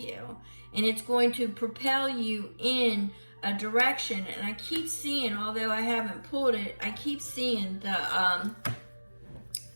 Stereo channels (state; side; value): inverted; both; correlation -1.00